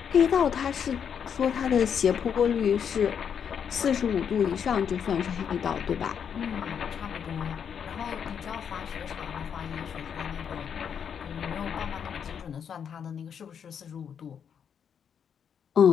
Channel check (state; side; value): quieter; right; 7.7 dB